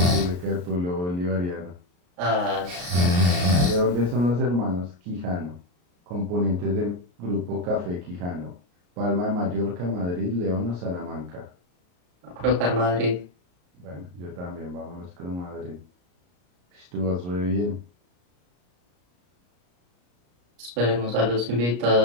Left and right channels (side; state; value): left; late; 34 ms